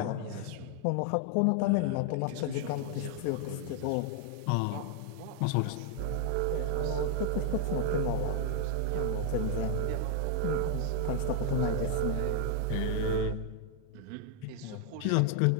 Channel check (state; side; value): different; both; correlation 0.00